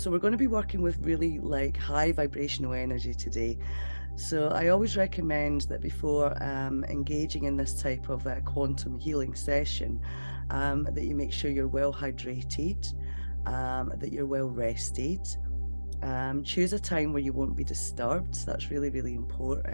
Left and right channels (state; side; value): inverted; both; correlation -1.00